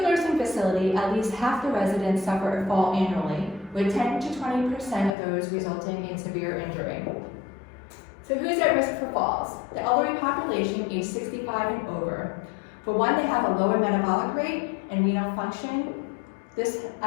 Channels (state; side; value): drops out; right; at 5.2 s